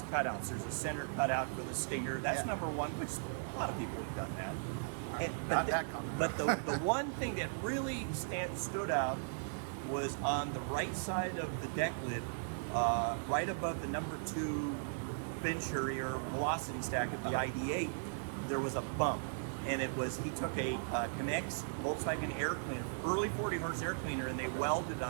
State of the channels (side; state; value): left; silent; digital silence